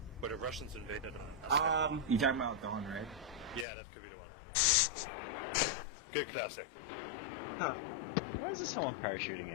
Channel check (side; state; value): right; drops out; at 3.7 s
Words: where the Russians invaded You talking about Dawn, right? yeah, that could be. Good classic. Huh. Why is there someone parachuting